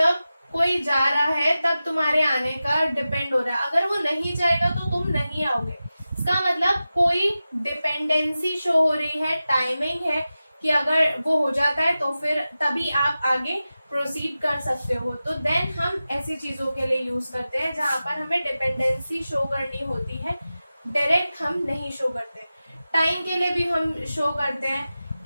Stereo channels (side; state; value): both; inverted; correlation -0.94